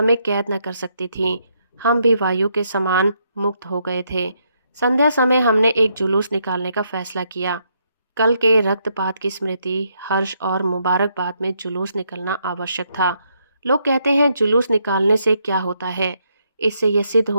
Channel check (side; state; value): both; inverted; correlation -0.76